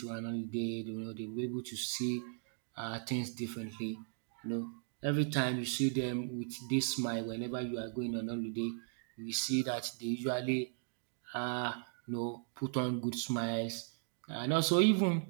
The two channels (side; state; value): left; silent; digital silence